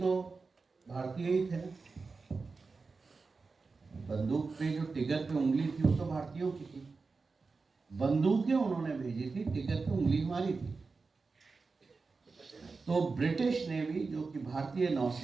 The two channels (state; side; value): quieter; left; 4.3 dB